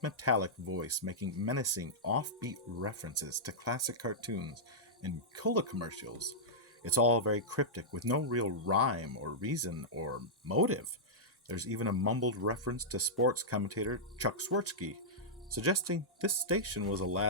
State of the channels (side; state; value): both; normal; correlation -0.11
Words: metallic voice making menacing, offbeat references to classic cartoons and cola commercials. It's all very cryptic, with no real rhyme or reason or motive. There's even a mumbled reference to sports commentator Chuck Swirsky, suggesting this station was a